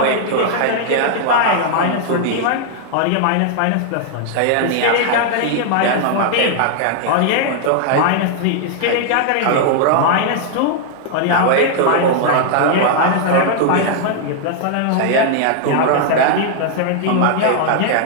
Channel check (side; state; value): both; different; correlation 0.00